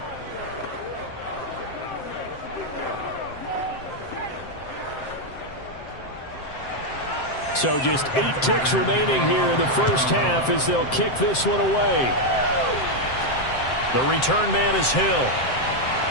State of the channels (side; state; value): right; late; 7.7 ms